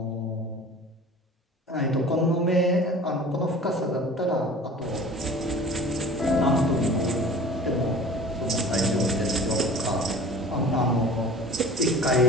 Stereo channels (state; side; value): normal; both; correlation 0.43